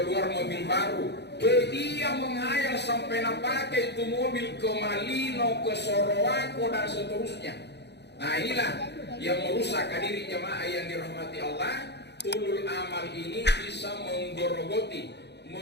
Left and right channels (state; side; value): late; right; 0.49 ms